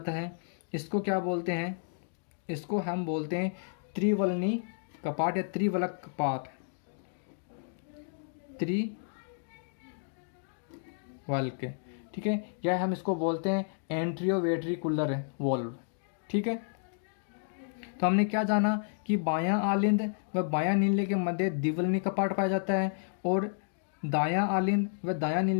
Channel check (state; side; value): silent; right; digital silence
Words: है। इसको क्या बोलते हैं, इसको हम बोलते हैं त्रिवलनी कपाट या त्रिवलक कपाट, त्रिवल्क। ठीक है, या हम इसको बोलते हैं एंट्रियोवेट्रिकुलर वॉल्व। ठीक है, तो हमने क्या जाना कि बायां आलिंद व बायां नीले के मध्य द्विवलनी कपाट पाया जाता है और दायां आलिंद व दायां